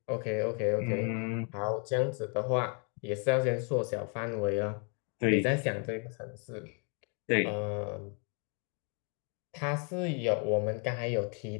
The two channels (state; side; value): quieter; right; 38.6 dB